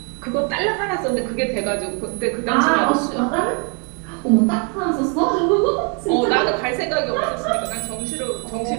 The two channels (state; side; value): quieter; left; 37.3 dB